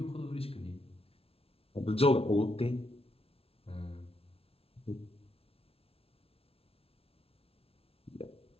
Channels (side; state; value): right; late; 0.27 ms